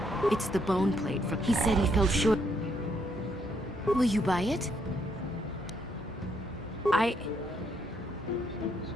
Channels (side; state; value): both; normal; correlation 0.73